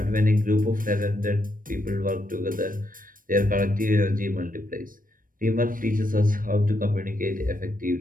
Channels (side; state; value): left; late; 0.40 ms